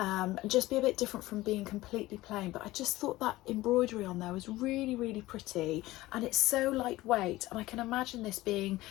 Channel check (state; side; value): quieter; right; 17.8 dB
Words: just be a bit different from being completely plain. But I just thought that embroidery on there was really, really pretty, and it's so lightweight, and I can imagine this being